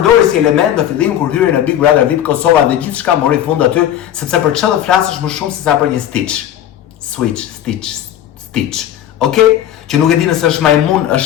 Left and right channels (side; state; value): right; quieter; 11.3 dB